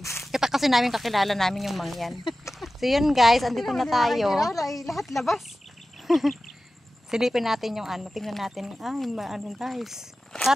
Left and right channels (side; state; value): both; normal; correlation 0.95